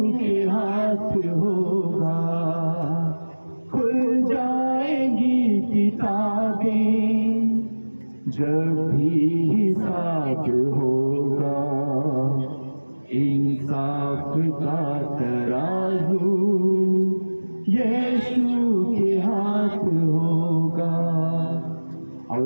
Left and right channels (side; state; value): both; inverted; correlation -1.00